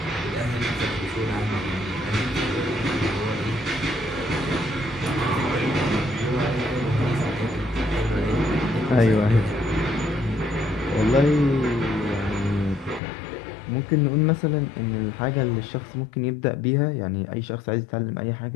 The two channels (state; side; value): drops out; right; at 13.0 s